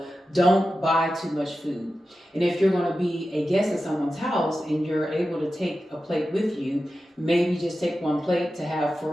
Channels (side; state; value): both; normal; correlation 0.92